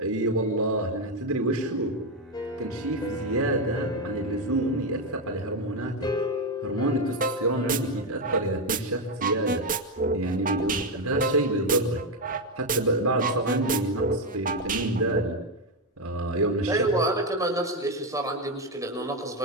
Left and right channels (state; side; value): normal; both; correlation 0.08